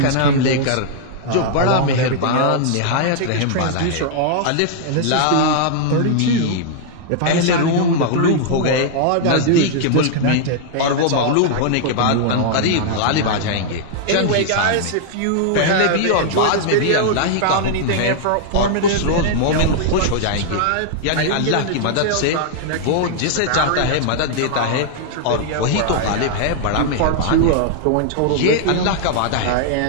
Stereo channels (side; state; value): both; different; correlation -0.01